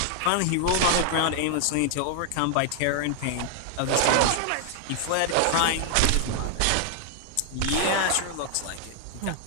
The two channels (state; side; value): different; both; correlation 0.00